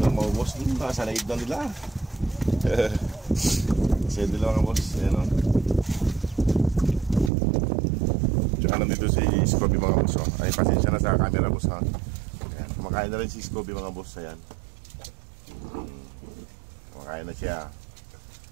mga boss. Sa laib na nila. Kasi nila mga boss. Ayan o. Tsaka nandito si Scooby mga boss. Ay, pasensya na sa camera boss ha. Ayan. Kumakain na rin si Scooby mga boss. Ayan. Kumakain na siya.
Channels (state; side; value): drops out; left; at 7.3 s